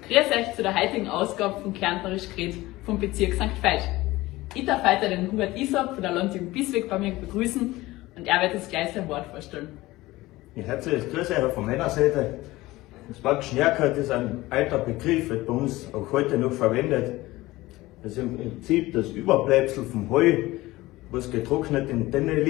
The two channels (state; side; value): quieter; right; 18.8 dB